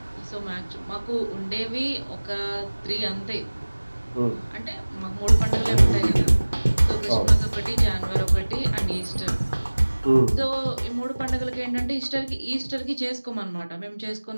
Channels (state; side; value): inverted; both; correlation -1.00